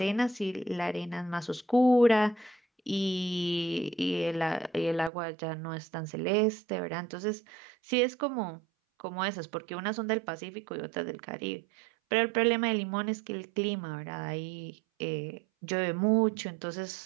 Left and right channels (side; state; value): left; drops out; at 5.1 s